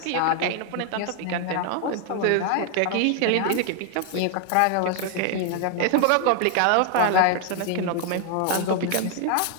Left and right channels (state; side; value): different; both; correlation 0.00